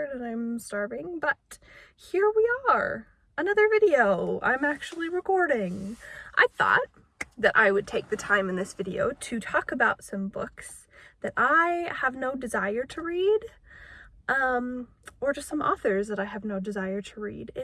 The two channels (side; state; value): both; identical; correlation 1.00